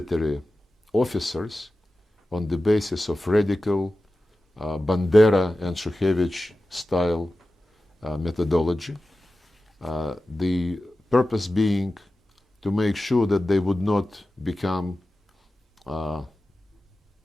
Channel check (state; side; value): normal; both; correlation 0.94